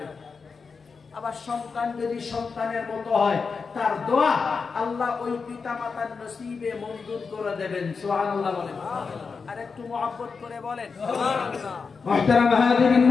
আবার সন্তান যদি সন্তানের মতো হয়, তার দোয়া আল্লাহ ওই পিতা মাতার নসিবে মঞ্জুর করে দেবেন। সুবহানাল্লাহ বলেন। আর একটু মহব্বত করে বলেন সুবহানাল্লাহ। মুহতারাম হাজিরিন,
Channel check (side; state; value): right; quieter; 5.1 dB